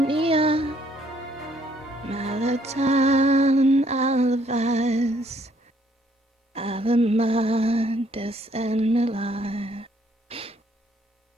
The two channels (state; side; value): normal; both; correlation 0.66